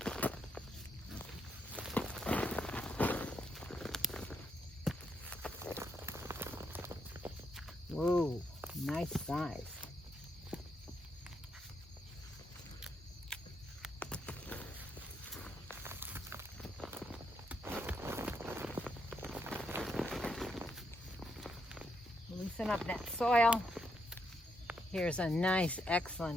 whoa, nice size. Loosen up that soil. Here's a nice,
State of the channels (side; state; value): both; normal; correlation 0.78